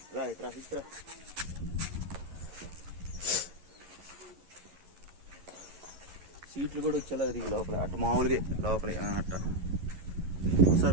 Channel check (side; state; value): left; late; 11 ms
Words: రా ఇట్రా. సీట్లు కూడా వచ్చేలా తిరిగి లోపల, అట్ట మామూలుగా లోపల అట్ట